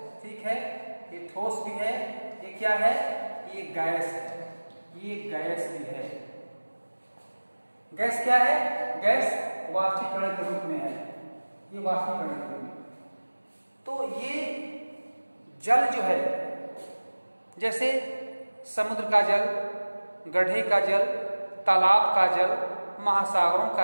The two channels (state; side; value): inverted; both; correlation -1.00